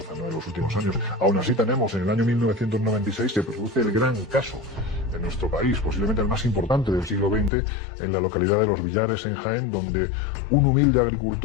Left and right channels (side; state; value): right; drops out; at 7.5 s